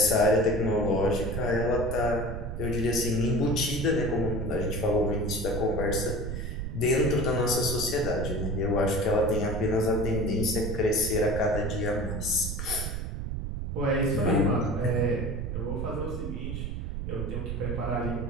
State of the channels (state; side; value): noise; right; rumble, 4 dB below the sound